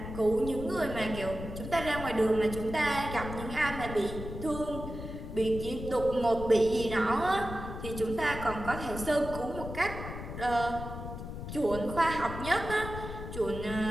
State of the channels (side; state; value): left; noise; rumble, 8 dB below the sound